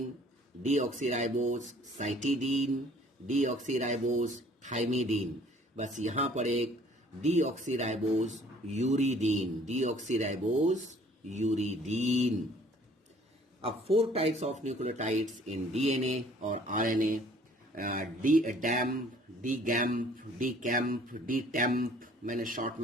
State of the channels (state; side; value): normal; both; correlation 0.55